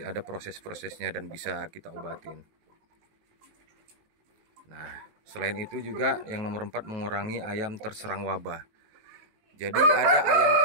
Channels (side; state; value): left; late; 19 ms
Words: ada proses-prosesnya dan bisa kita obatin. Nah, selain itu juga yang nomor 4, mengurangi ayam terserang wabah. Jadi ada ayam,